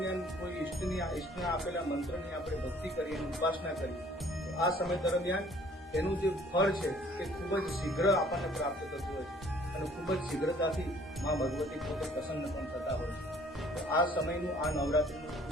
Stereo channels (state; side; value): normal; both; correlation 0.57